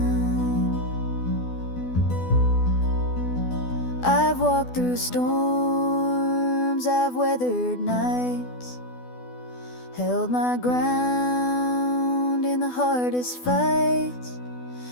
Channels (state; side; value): late; right; 12 ms